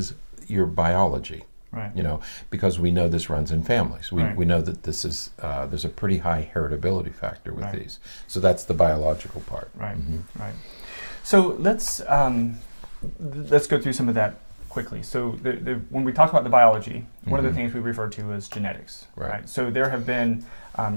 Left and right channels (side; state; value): both; inverted; correlation -1.00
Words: your biology. You know, because we know this runs in families. We know that this is there's a pretty high heritability factor with these. So that's the biological part. Right. So let's go through some of that quickly. So when we talk about the biology, one of the things we refer to is genetics. Right. So there have been